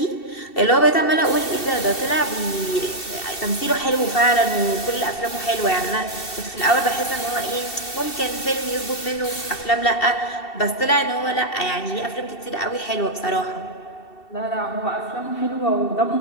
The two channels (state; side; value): late; right; 2.7 ms